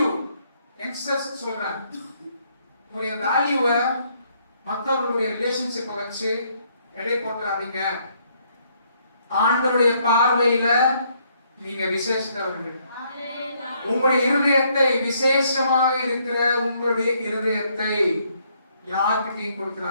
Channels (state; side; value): inverted; both; correlation -0.69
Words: யங்ஸ்டர்ஸ் சொல்றாங்க, உங்களுடைய வேல்யூவை மற்றவர்களுடைய ரிலேஷன்ஷிப்பை வச்சு எடை போட்டுறாதீங்க. ஆண்டவருடைய பார்வையில நீங்க விசேஷத்தவர்கள். உங்களுடைய இருதயத்தை, விசேஷமாக இருக்கிற உங்களுடைய இருதயத்தை யார்கிட்டையும்